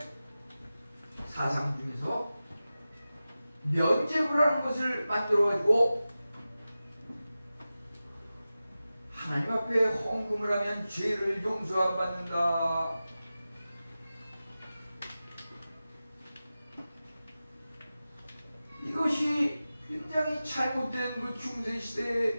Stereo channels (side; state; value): both; inverted; correlation -0.95